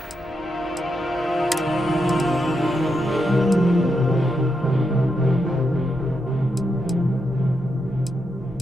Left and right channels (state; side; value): noise; left; hum, 24 dB below the sound